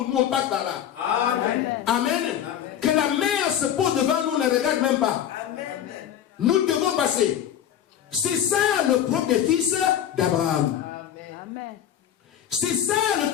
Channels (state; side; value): quieter; right; 10.2 dB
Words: nous on passe par là. Amen. Amen. Que la mer se pose devant nous, on ne regarde même pas. Nous devons passer. C'est ça le propre des fils d'Abraham. Amen. C'est ça le